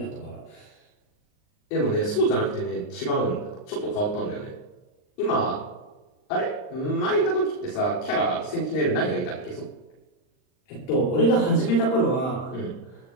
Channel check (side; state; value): right; late; 39 ms